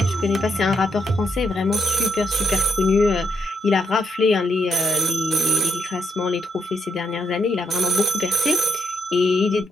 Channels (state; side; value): normal; both; correlation 0.77